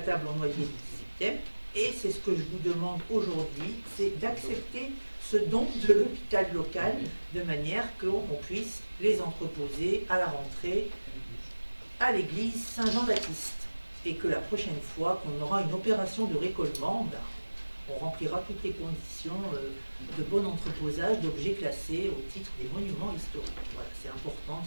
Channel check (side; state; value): both; inverted; correlation -1.00